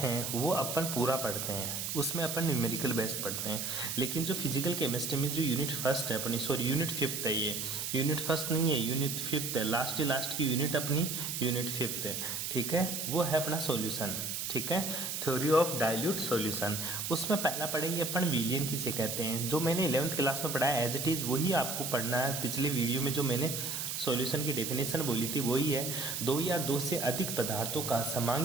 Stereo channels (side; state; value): right; noise; hiss, 3 dB below the sound